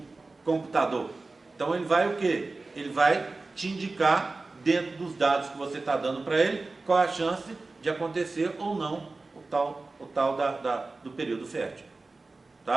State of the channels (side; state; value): left; quieter; 3.5 dB